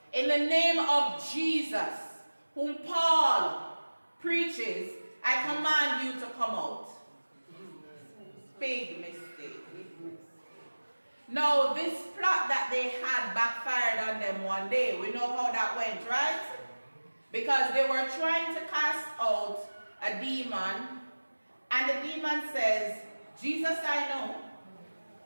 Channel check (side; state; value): both; inverted; correlation -1.00